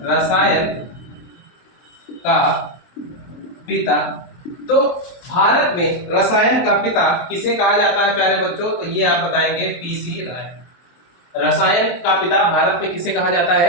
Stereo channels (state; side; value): late; right; 23 ms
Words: रसायन का पिता, तो भारत में रसायन का पिता किसे कहा जाता है प्यारे बच्चों, तो ये आप बताएंगे पीसी राय। रसायन का पिता भारत में किसे कहा जाता